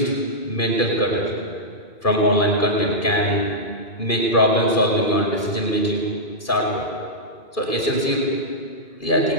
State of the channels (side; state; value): right; late; 2.4 ms